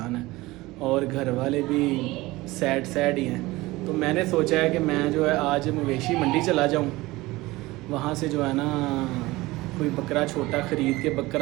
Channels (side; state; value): left; quieter; 20.0 dB